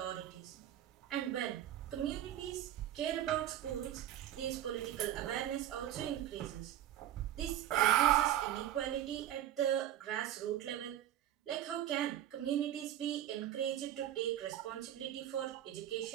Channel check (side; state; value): left; quieter; 11.9 dB